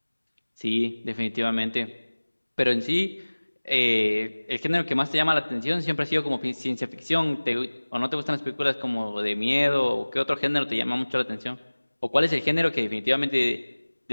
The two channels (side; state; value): both; inverted; correlation -1.00